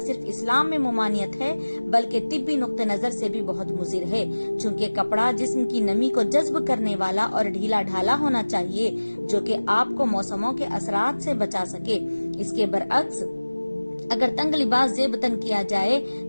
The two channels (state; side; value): inverted; both; correlation -1.00